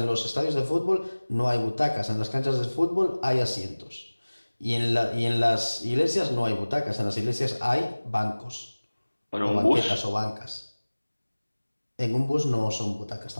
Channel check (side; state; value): both; inverted; correlation -1.00